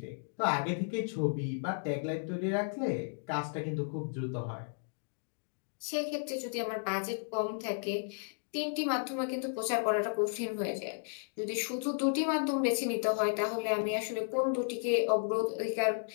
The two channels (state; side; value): silent; right; digital silence